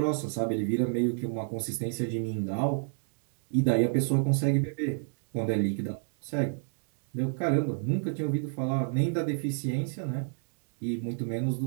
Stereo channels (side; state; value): left; silent; digital silence